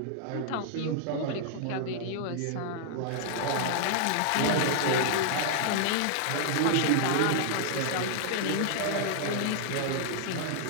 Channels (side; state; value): both; different; correlation -0.01